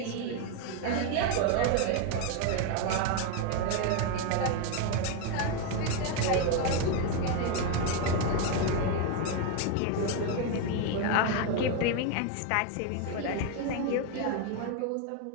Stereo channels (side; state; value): both; different; correlation 0.02